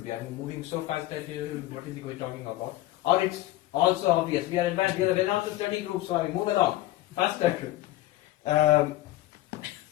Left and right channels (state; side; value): quieter; right; 16.1 dB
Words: be. I'm moving so fast that what is he talking about? Or it's also obvious. We are advanced. We are a Vedanta study group, so I move along faster.